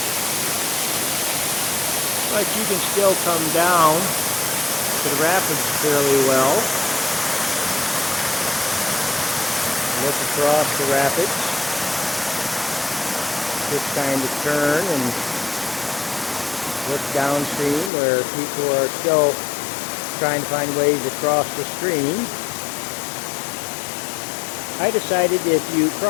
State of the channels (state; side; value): drops out; right; at 17.9 s